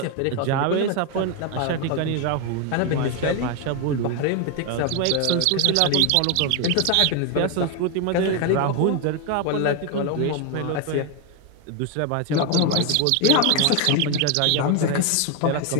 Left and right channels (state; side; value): different; both; correlation 0.01